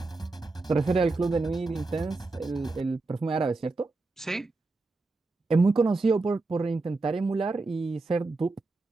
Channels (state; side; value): quieter; left; 3.5 dB